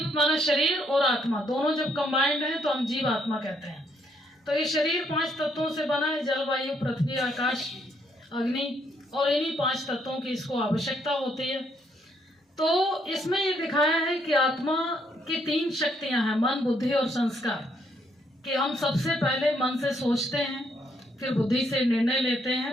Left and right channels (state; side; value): normal; both; correlation 0.72